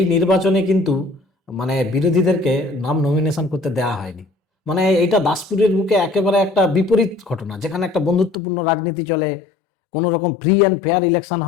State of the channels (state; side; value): drops out; right; at 8.3 s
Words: নির্বাচনে কিন্তু মানে বিরোধীদেরকে নাম নমিনেশন করতে দেওয়া হয়নি। মানে এইটা দাসপুরের বুকে একেবারে একটা বিপরীত ঘটনা, যেখানে একটা বন্ধুত্বপূর্ণ রাজনীতি চলে, কোনো রকম ফ্রি অ্যান্ড ফেয়ার ইলেকশন